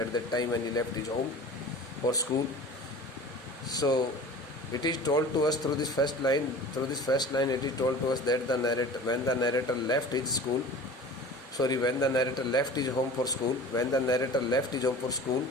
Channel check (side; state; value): both; normal; correlation 0.39